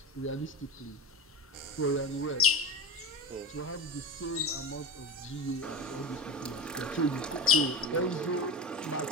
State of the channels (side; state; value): both; normal; correlation 0.25